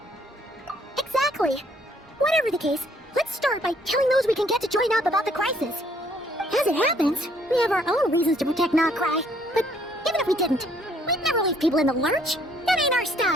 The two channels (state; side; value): normal; both; correlation 0.64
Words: Exactly! Whatever the case, let's start by telling those we can get to join up about the crisis. As it happens, we have our own reasons to protect Nordcry, but even if we didn't, we'd never leave people in the lurch. That ain't our